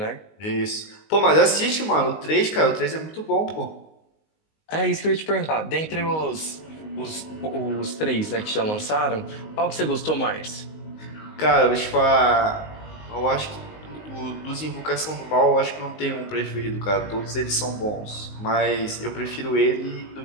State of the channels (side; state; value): right; late; 19 ms